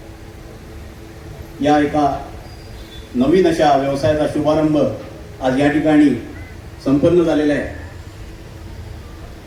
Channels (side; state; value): both; identical; correlation 1.00